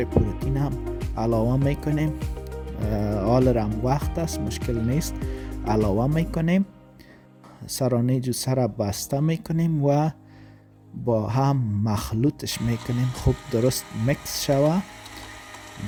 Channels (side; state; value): both; identical; correlation 1.00